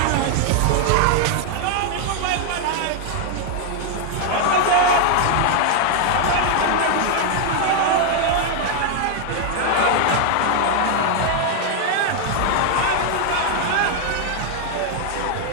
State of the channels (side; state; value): both; different; correlation 0.00